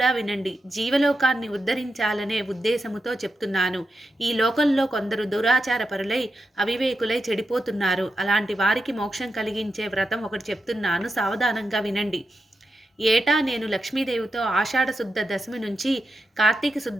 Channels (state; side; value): normal; both; correlation 0.87